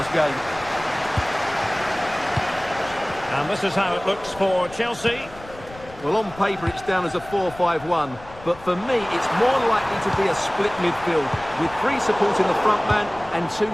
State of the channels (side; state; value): left; noise; rumble, 19 dB below the sound